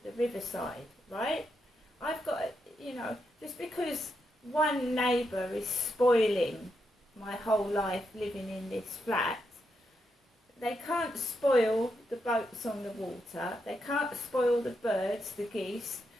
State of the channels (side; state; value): both; normal; correlation 0.82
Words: the riverside, right? I've got, you know, just because one neighbour is spoiling my whole life living in this flat, they can't spoil the boats on the water, they can't spoil the birds, the geese,